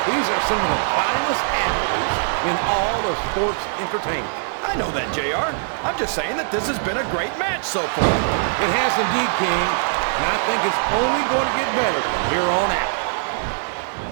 These are some of the finest athletes in all of sports entertainment. I know that, JR. I'm just saying that this has been a great match so far. It has indeed, King, and I think it's only going to get better from here on out.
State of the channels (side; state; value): left; silent; digital silence